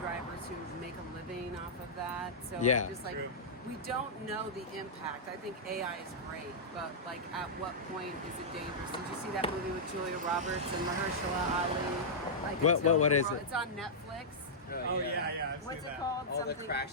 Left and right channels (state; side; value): normal; both; correlation -0.10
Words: who make a living off of that? So Yeah. just like, we don't know the impact. I think AI is great, but like, at what point is it dangerous? Did you see that movie with Julia Roberts and Mahershala Ali? Like, What is it? It's on Netflix. Oh, yeah. I've What's seen it that. called? All the Something.